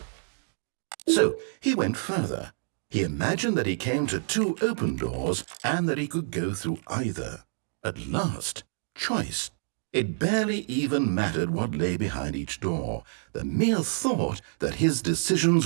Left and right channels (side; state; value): left; silent; digital silence